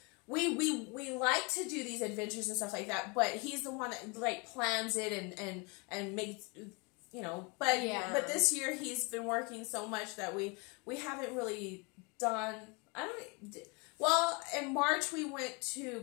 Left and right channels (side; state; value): right; quieter; 29.5 dB